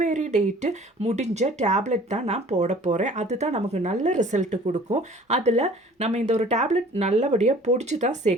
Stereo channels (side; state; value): both; normal; correlation 0.50